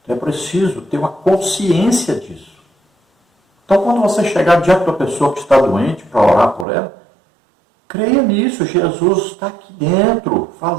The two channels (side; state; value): left; drops out; at 6.7 s